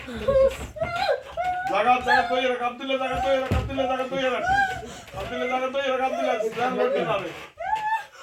জায়গা জায়গা তৈরি রাখ, আব্দুল্লাহ জায়গা তৈরি রাখ, আব্দুল্লাহ জায়গা তৈরি রাখ, আব্দুল্লাহ জায়গা তৈরি রাখ, আব্দুল্লাহ ধ্যান করতে না রে।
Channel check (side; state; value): both; identical; correlation 1.00